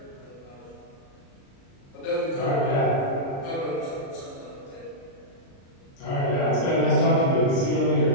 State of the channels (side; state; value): right; late; 36 ms